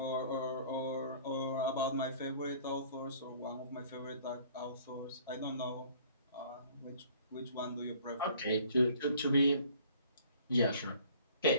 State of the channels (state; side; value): inverted; both; correlation -0.53